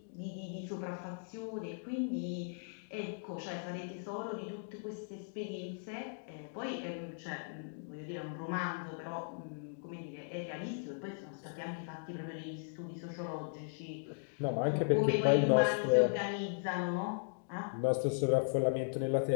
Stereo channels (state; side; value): silent; right; digital silence